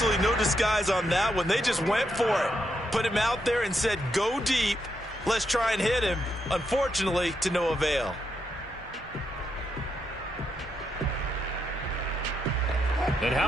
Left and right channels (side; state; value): both; normal; correlation 0.81